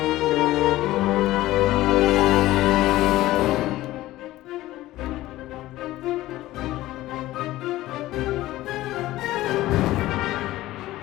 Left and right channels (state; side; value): quieter; right; 16.3 dB